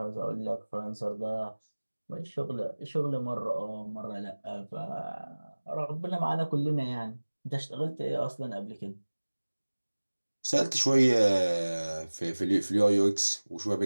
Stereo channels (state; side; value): inverted; both; correlation -1.00